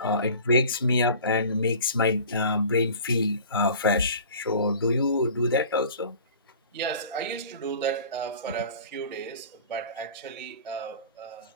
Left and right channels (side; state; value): both; inverted; correlation -0.42